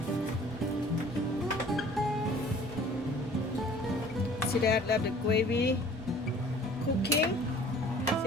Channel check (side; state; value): both; normal; correlation 0.51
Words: See that? Let the gravy cooking.